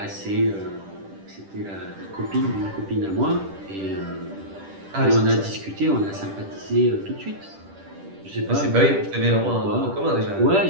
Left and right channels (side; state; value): left; late; 10 ms